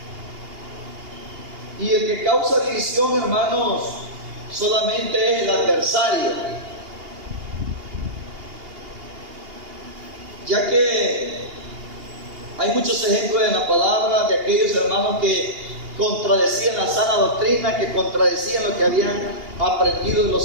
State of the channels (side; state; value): left; late; 2.8 ms